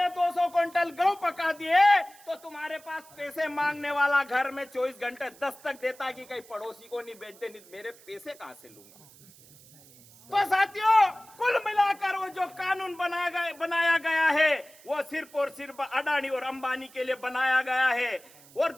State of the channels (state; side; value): noise; right; hiss, 24 dB below the sound